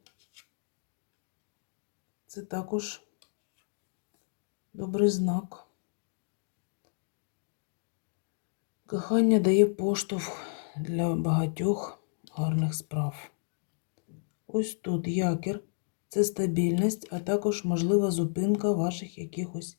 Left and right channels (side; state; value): right; silent; digital silence